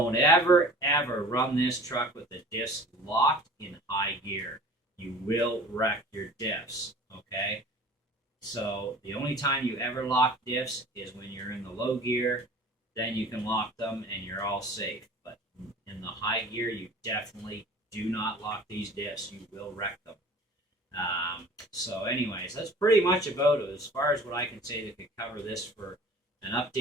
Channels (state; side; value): normal; both; correlation 0.44